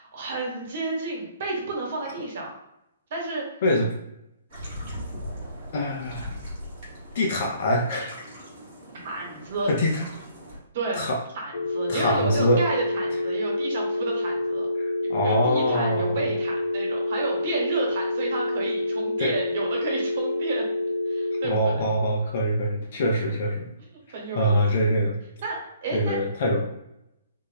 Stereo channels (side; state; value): both; inverted; correlation -0.66